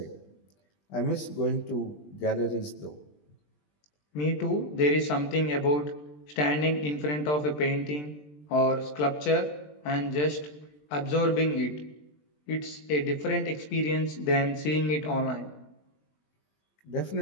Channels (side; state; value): right; late; 20 ms